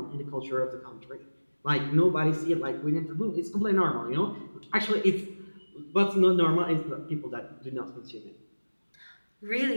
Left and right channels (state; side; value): inverted; both; correlation -1.00